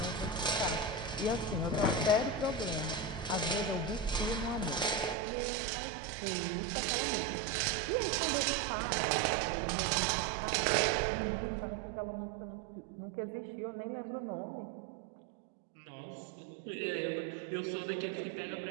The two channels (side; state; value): left; drops out; at 5.2 s